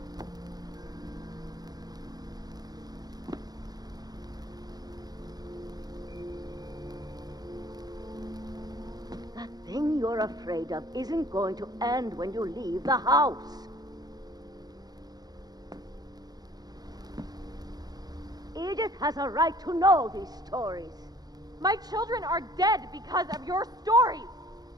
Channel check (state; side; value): late; left; 0.19 ms